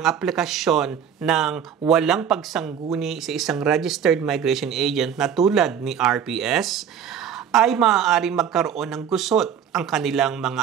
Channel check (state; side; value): quieter; left; 8.3 dB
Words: aplikasyon ng walang pagsangguni sa isang registered migration agent na tulad ni RPS, ay maaaring magkaroon ng gusot ang kanilang